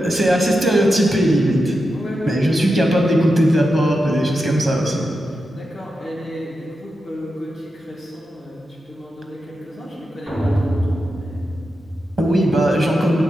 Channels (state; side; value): normal; both; correlation 0.89